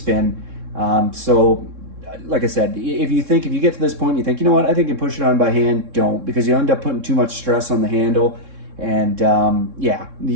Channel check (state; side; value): late; left; 3.6 ms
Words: So like I said, if you get to this point and you think, you know what, I think I can push it on by hand, don't, because you end up putting too much stress on the handle. And yeah,